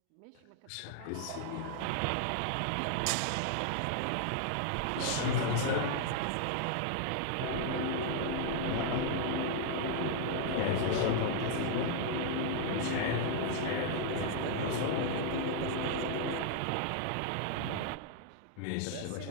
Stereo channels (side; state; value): both; different; correlation -0.01